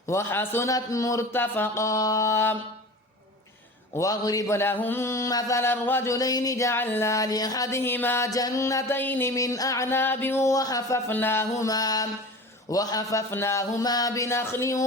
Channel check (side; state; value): both; normal; correlation 0.35